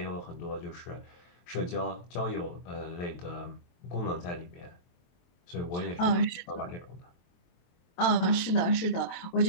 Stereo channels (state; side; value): late; right; 22 ms